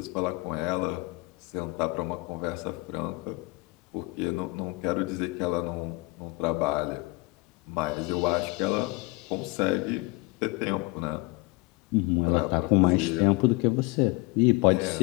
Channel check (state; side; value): quieter; right; 24.9 dB